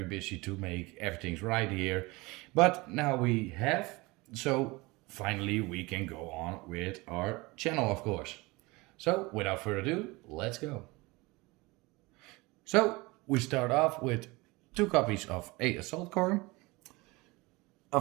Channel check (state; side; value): quieter; left; 23.5 dB